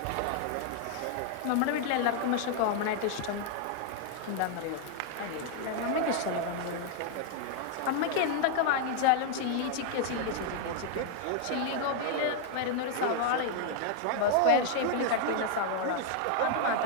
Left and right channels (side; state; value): both; different; correlation 0.00